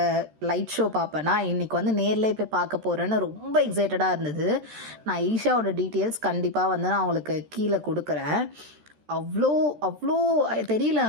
லைட் ஷோ பார்ப்பேன்னா, இன்றைக்கி வந்து நேரில் போய் பார்க்க போகிறேன்னு ரொம்ப எக்ஸைட்டடாக இருந்தது. நான் ஈஷாவோட டீட்டெயில்ஸ் கண்டிப்பாக வந்து நான் அவங்களுக்கு கீழே கொடுக்குறேன். அவ்வளோ அவ்வளோ தெரியல.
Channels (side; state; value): left; late; 13 ms